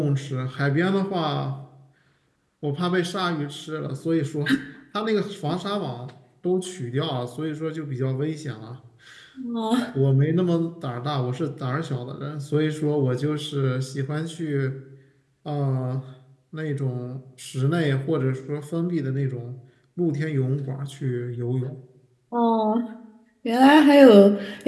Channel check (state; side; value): identical; both; correlation 1.00